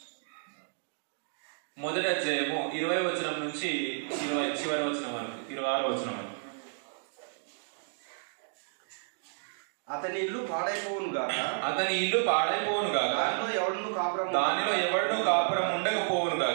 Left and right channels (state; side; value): silent; left; digital silence